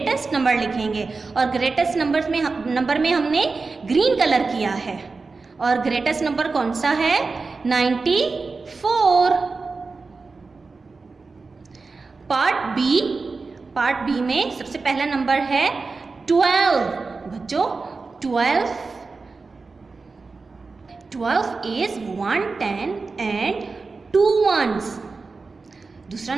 नंबर लिखेंगे, और ग्रेटेस्ट नंबर में हमने ग्रीन कलर किया है। और ग्रेटेस्ट नंबर कौन सा है? 94। पार्ट बी में सबसे पहला नंबर है 12। बच्चों 12 is 1 10 and 2 ones। दूसरा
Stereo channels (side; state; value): left; quieter; 4.1 dB